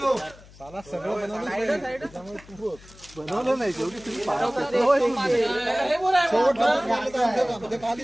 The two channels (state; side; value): noise; left; hum, 22 dB below the sound